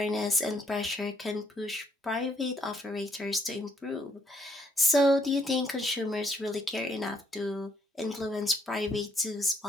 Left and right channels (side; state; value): both; normal; correlation 0.69